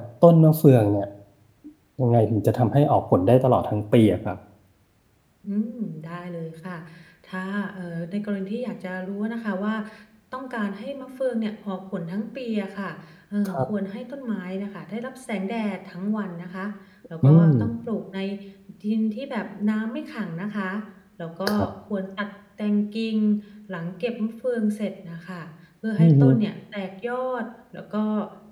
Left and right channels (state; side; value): identical; both; correlation 1.00